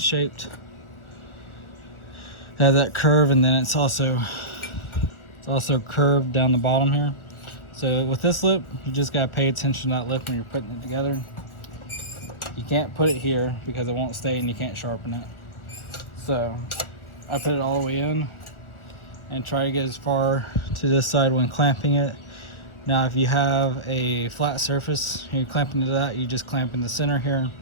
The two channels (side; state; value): right; late; 1.4 ms